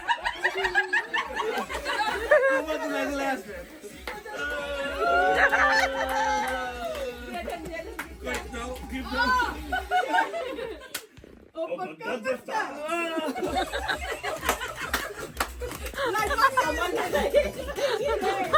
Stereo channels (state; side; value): identical; both; correlation 1.00